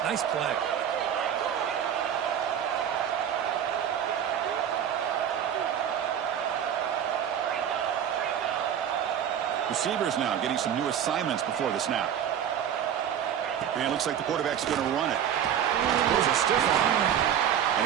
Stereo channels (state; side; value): quieter; left; 9.3 dB